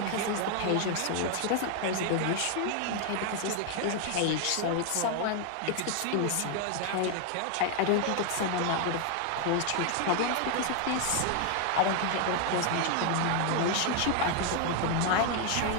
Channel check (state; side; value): different; both; correlation 0.00